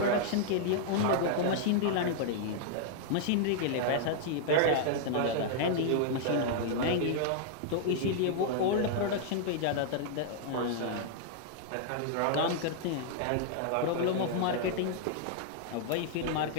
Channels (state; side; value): different; both; correlation -0.01